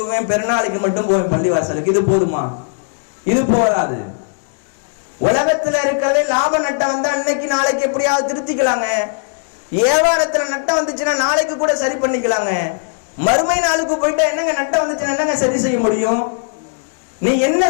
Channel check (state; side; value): silent; right; 68 dB below the other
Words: பெருநாளைக்கு மட்டும் போவேன் பள்ளிவாசலுக்கு, இது போதுமா? இது போதாது. உலகத்துல இருக்கிறதே லாப நட்டம் வந்தா இன்னைக்கு நாளைக்கு எப்படியாவது திருத்திக்கலாங்க. வியாபாரத்துல நட்டம் வந்துச்சுன்னா நாளைக்கு கூட சரி பண்ணிக்கலாங்க. மறுமை நாளுக்கு போயிட்டா என்னங்க நட்டம் வந்துச்சுன்னா என்னங்க சரி செய்ய முடியும்? நீ என்ன